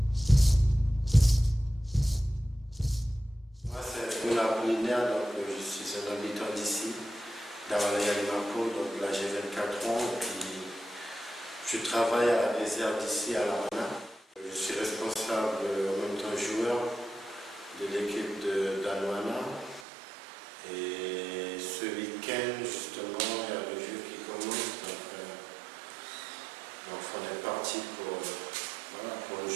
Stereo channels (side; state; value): left; drops out; at 19.9 s